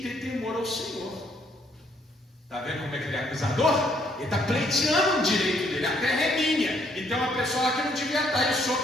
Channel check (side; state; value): both; normal; correlation 0.68